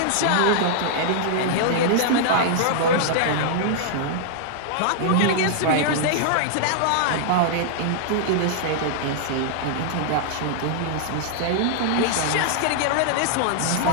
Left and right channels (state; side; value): different; both; correlation -0.01